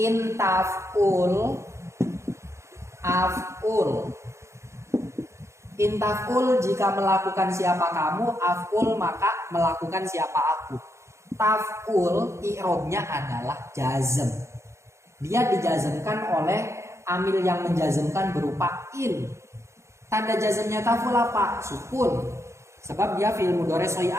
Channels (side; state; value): left; late; 0.14 ms